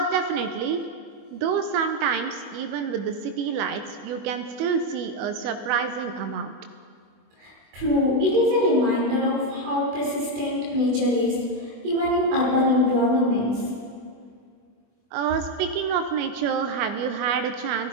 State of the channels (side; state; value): left; late; 25 ms